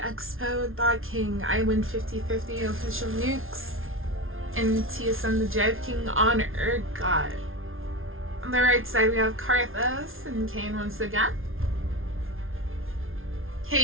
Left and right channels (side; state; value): left; late; 0.60 ms